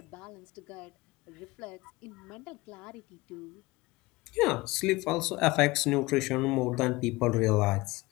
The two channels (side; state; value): right; quieter; 21.5 dB